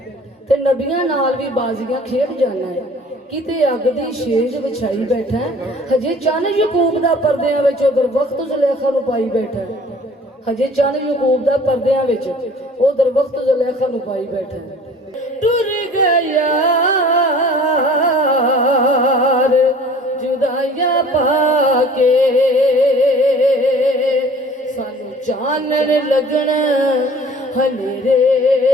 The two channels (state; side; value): normal; both; correlation 0.48